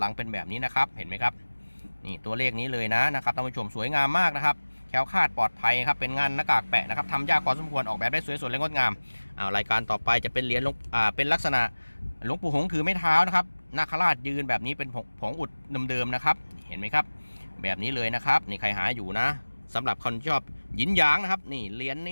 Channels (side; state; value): both; inverted; correlation -1.00